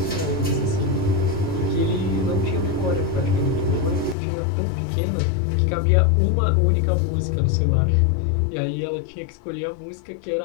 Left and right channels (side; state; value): right; drops out; at 4.2 s